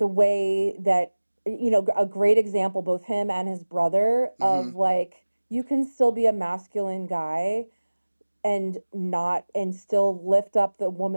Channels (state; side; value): inverted; both; correlation -1.00